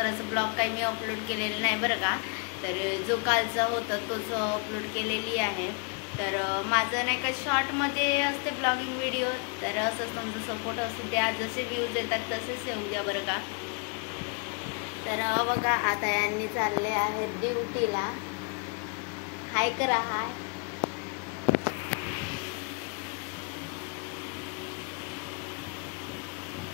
ब्लॉग काही मी अपलोड केलेलं नाही बरं का. तर जो कालचा होता तोच अपलोड केलेली आहे. तर माझं नाही का शॉर्टमध्ये असते ब्लॉगिंग व्हिडिओ, तर असंच तुमचा सपोर्ट असू द्या, जसे व्ह्यूज येतात तसेच येऊ द्या बरं का. तर बघा आता यांनी चालले आहेत ड्युटीला. हाय करा, हाय.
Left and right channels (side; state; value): right; quieter; 37.0 dB